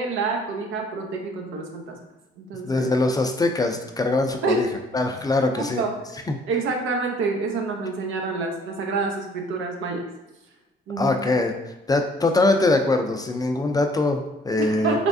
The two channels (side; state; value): both; normal; correlation 0.58